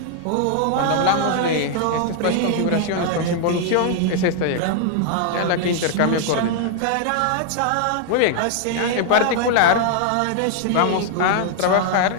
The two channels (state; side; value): different; both; correlation 0.00